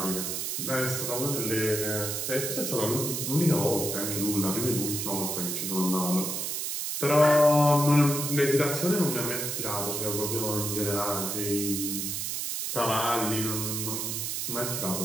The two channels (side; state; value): right; noise; hiss, 2 dB below the sound